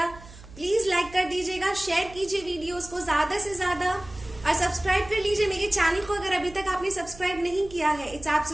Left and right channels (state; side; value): noise; right; hum, 18 dB below the sound